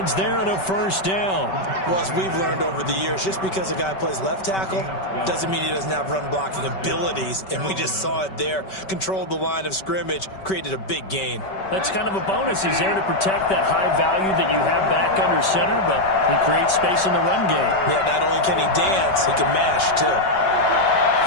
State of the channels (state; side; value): late; right; 5.2 ms